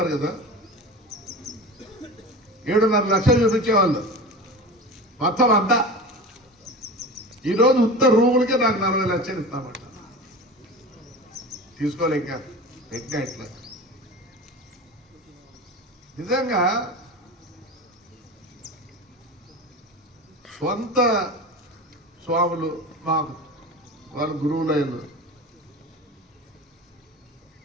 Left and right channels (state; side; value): normal; both; correlation 0.31